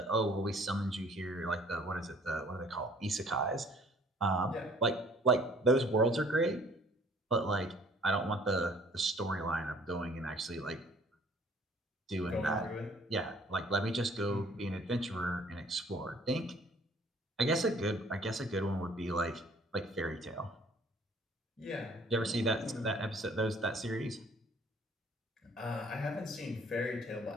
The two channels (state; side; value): normal; both; correlation 0.56